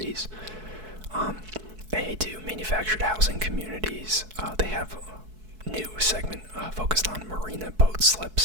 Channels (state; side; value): late; left; 4.6 ms